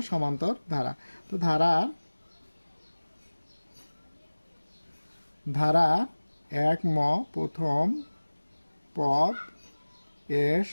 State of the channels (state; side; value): inverted; both; correlation -1.00